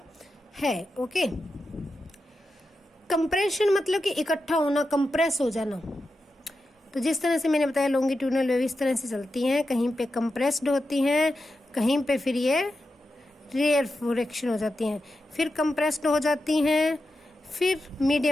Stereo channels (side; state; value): both; normal; correlation 0.90